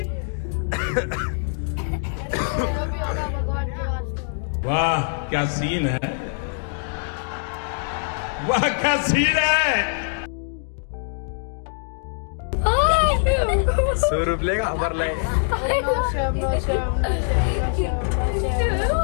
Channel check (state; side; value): silent; right; digital silence